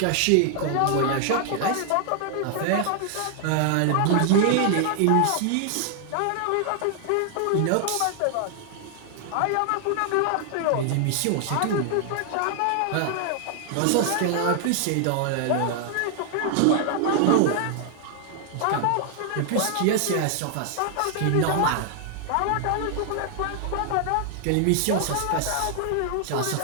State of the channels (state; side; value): different; both; correlation 0.00